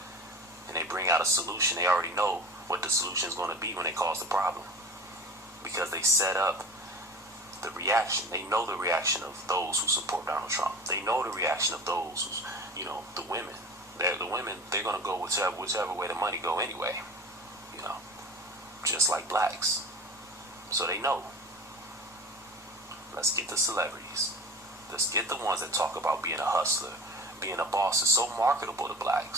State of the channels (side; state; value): both; normal; correlation 0.36